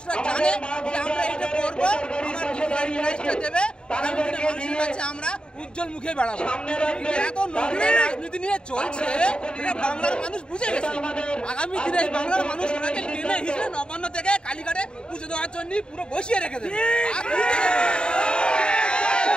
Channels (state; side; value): late; right; 0.050 ms